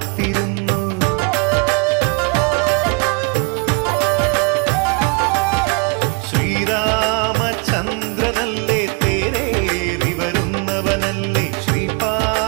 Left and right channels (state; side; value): quieter; left; 32.9 dB